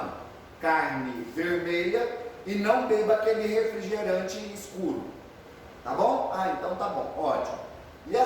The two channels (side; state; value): both; identical; correlation 1.00